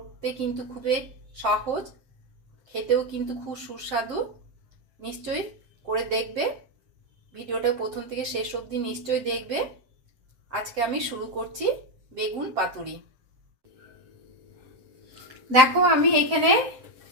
কিন্তু খুবই সহজ, খেতেও কিন্তু খুব সুস্বাদু। নিশ্চয়ই করে দেখবে। ভিডিওটা প্রথম থেকে শেষ অবধি নিশ্চয়ই দেখবে। আজকে আমি শুরু করছি বেগুন পাতুরি। দেখো আমি এখানে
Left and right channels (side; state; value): left; late; 7.7 ms